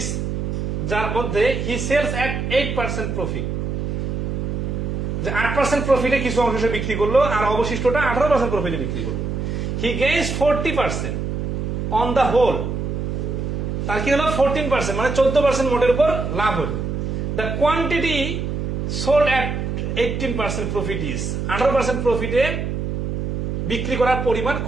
যার মধ্যে he sells at 8% profit, যে 8% প্রফিটে কিছু অংশ সে বিক্রি করলো আর অবশিষ্টটা 18% প্রফিটে বিক্রি করলো। He gains 40% on the whole. তার কি হলো 14%, মানে 14% মোটের উপর লাভ হলো। The quantity sold at 18% profit is, 18% প্রফিটে বিক্রি করার পরিমাণ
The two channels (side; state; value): right; noise; hum, 2 dB below the sound